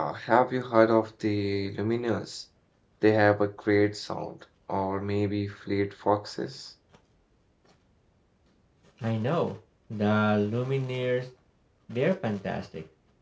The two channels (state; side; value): identical; both; correlation 1.00